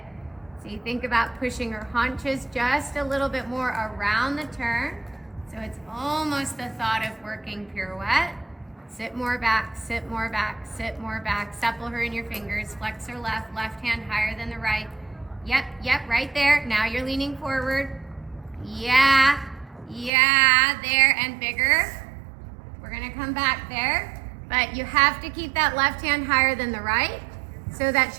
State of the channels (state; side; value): drops out; left; at 20.1 s